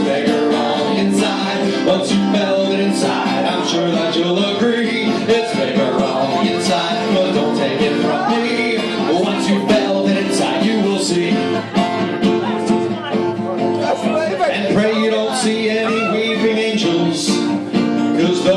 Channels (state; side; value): identical; both; correlation 1.00